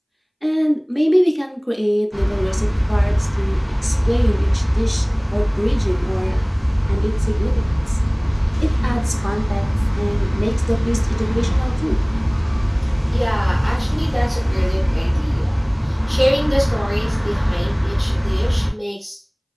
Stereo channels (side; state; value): both; identical; correlation 1.00